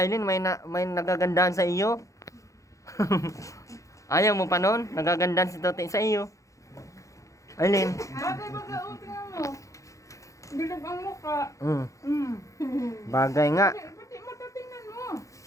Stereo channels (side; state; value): right; late; 0.15 ms